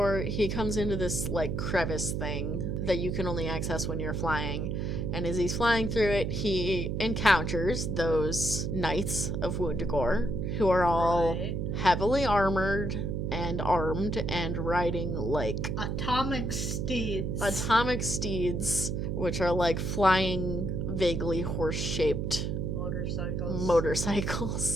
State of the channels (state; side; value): noise; right; hum, 1 dB below the sound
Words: he comes into this, like, crevice thing that you can only access when you're flying. And as he's flying through it, he encounters those Knights of Wundagore, who are all heavily armored and armed and riding, like... Atomic steeds, which are, like, flying, vaguely horse-shaped...